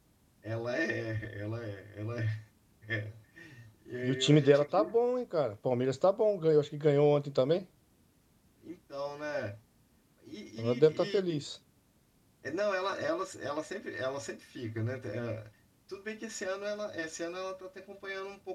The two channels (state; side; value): identical; both; correlation 1.00